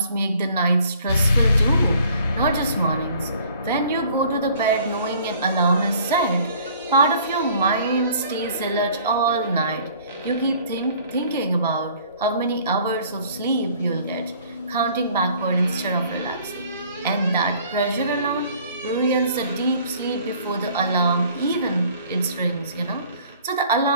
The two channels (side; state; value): both; inverted; correlation -0.55